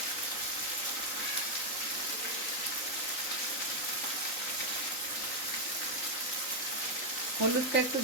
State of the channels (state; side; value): late; right; 3.9 ms